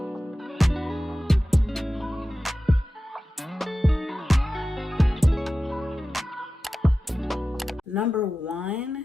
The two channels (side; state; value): both; normal; correlation 0.94